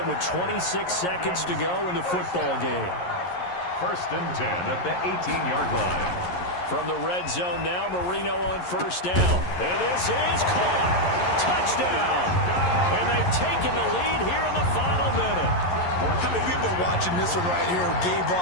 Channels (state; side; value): late; right; 11 ms